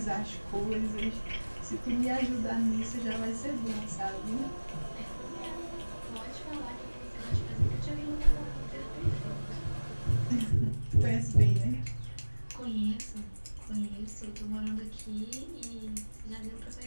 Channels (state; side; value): inverted; both; correlation -1.00